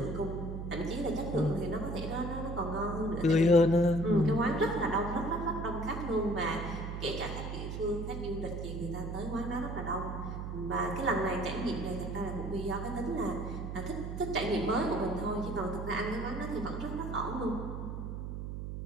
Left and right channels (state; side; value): noise; right; hum, 5 dB below the sound